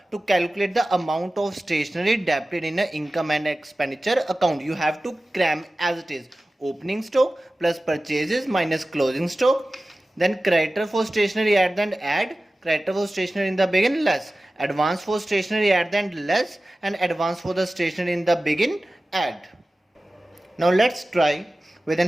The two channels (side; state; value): both; normal; correlation 0.96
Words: to calculate the amount of stationery debited in an income and expenditure account. You have to cram as it is. Opening stock plus purchases minus closing stock. Then creditor for stationery at the end add, creditor for stationery in the begin less, advance for stationery at the end less, and advance for the stationery in the begin add. Now let's try with the